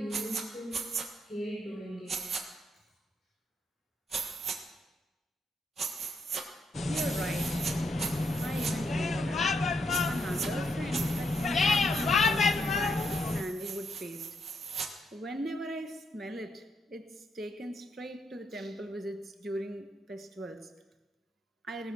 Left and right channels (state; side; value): normal; both; correlation 0.77